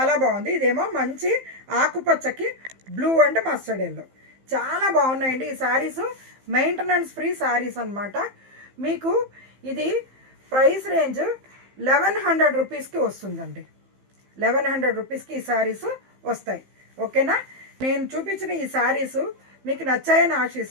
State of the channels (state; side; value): late; left; 15 ms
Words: బాగుంది. ఇదేమో మంచి ఆకుపచ్చకి బ్లూ అండ్ మస్టర్డ్ ఎల్లో, చాలా బాగున్నాయండి ఈ శారీస్. మెయింటెనెన్స్ ఫ్రీ శారీస్ అనమాట. మీకు ఇది ప్రైస్ రేంజ్ 1100 రూపీస్కి వస్తుందండి. 1100 రూపీస్కి ఈ శారీస్ వస్తాయి. ఓకేనా, నేను చూపించిన ఈ శారీస్ మీకు నచ్చాయని